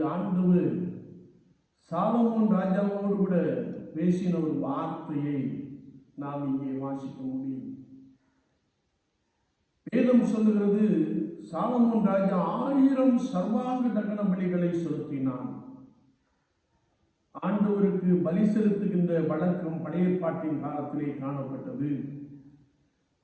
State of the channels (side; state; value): both; identical; correlation 1.00